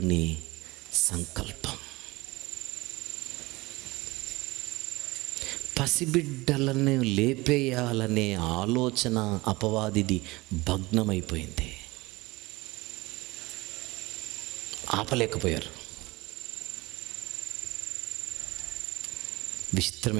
సంకల్పం. పసిబిడ్డలను లేపేయాలనే ఆలోచన అపవాదిది భగ్నమైపోయింది. ఆపలేకపోయారు. విచిత్రం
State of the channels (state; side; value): quieter; left; 21.8 dB